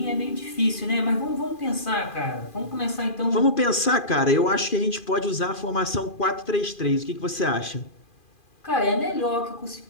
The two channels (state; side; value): late; right; 2.4 ms